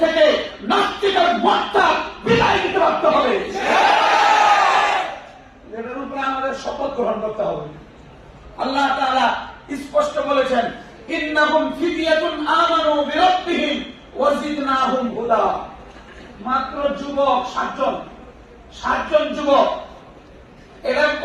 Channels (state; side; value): identical; both; correlation 1.00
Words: থেকে নাস্তিকের মতটা বিদায় দিতে পারতে হবে। এটার উপরে আমাদের শপথ গ্রহণ করতে হবে। আল্লাহ তাআলা স্পষ্ট বলেছেন, ইন্নাহুম ফিদিয়াতুন আমানু বিরাব্বিহিম ওয়া জিদনাহুম হুদা। মাত্র যুবক 7 জন যুবক এরা